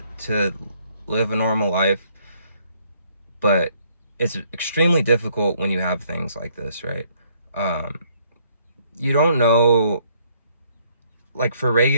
live a normal life, but it's extremely difficult when you have things like this, right? Um, you don't know, like for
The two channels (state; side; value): inverted; both; correlation -0.67